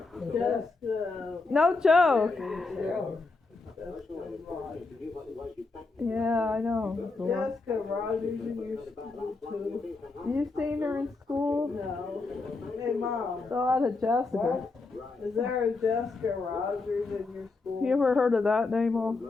Jessica. No joke. Cheryl. Yeah, I know. Jessica Rogers in your school too. You seen her in school? No. Hey Mom, A lot of Jessicas. is there a Jessica Rogers in your school? You ever heard of that name, Mom?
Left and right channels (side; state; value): right; quieter; 3.7 dB